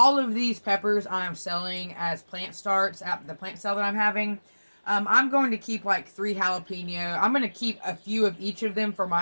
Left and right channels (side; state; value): both; inverted; correlation -1.00